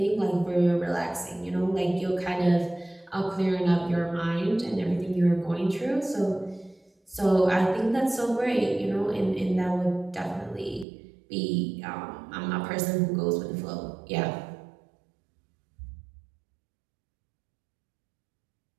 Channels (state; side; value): drops out; left; at 10.9 s